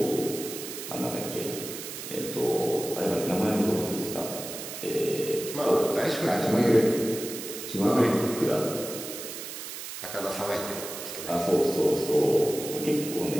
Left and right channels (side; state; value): right; noise; hiss, 9 dB below the sound